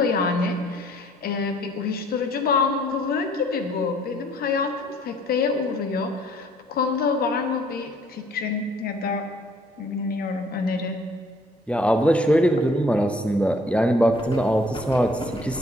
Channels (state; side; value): normal; both; correlation 0.60